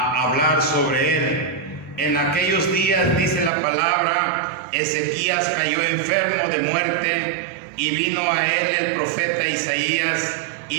sobre él. En aquellos días, dice la palabra, Ezequías cayó enfermo de muerte, y vino a él el profeta Isaías,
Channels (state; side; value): drops out; left; at 3.5 s